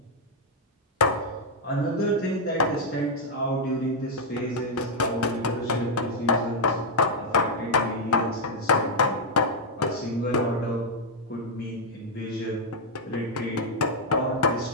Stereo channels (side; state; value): both; normal; correlation -0.03